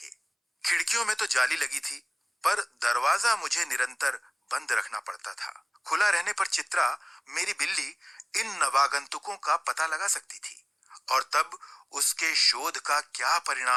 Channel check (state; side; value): identical; both; correlation 1.00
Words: खिड़कियों में तो जाली लगी थी, पर दरवाजा मुझे निरंतर बंद रखना पड़ता था। खुला रहने पर चित्रा, मेरी बिल्ली, इन नवागंतुकों का पता लगा सकती थी और तब उसके शोध का क्या